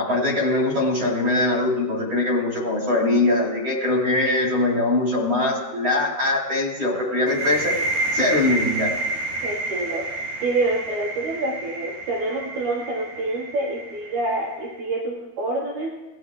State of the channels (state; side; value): late; left; 13 ms